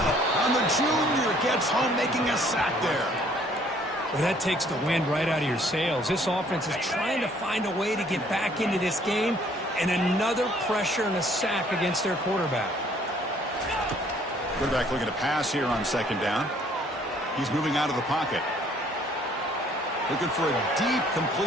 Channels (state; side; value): normal; both; correlation 0.61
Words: And the junior gets home, making a sack there. Well, that takes the wind right out of your sails. This offense is trying to find a way to get back into this game, and another pressure and a sack against their quarterback. Quarterback looking to pass here on 2nd down. He's moving out of the pocket. Looking for a deep